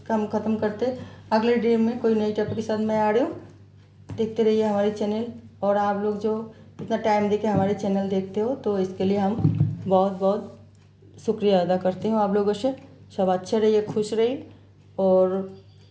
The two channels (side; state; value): both; identical; correlation 1.00